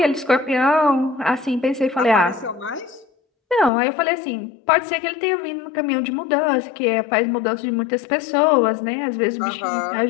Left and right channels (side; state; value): right; drops out; at 3.7 s